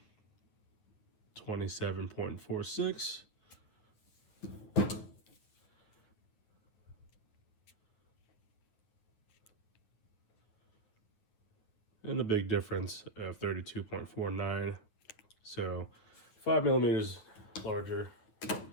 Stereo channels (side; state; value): right; late; 9.2 ms